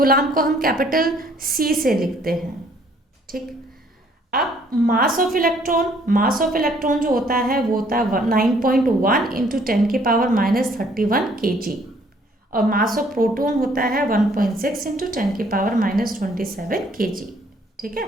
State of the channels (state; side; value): normal; both; correlation 0.62